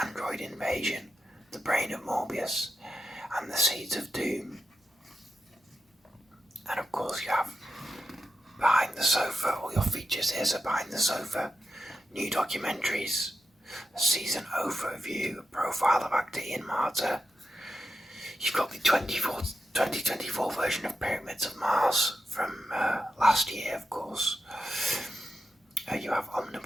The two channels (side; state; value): both; normal; correlation 0.88